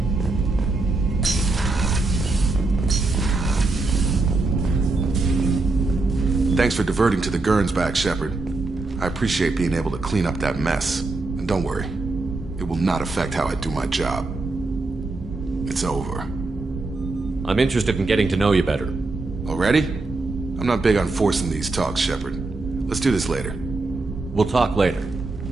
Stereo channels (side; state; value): left; quieter; 3.4 dB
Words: Thanks for diverting to the Gernsback, Shepard. I appreciate being able to clean up that mess. And don't worry, it will not affect how I do my job. It's over. I'm interested in getting to know you better. Already? I'm not big on forcing these talks, Shepard. Let's do this later. We'll talk later.